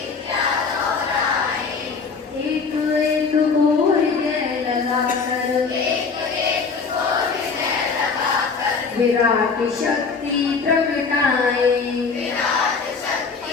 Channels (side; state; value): right; quieter; 5.0 dB